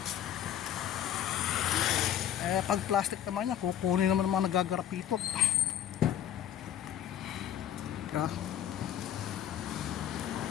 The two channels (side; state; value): right; quieter; 10.5 dB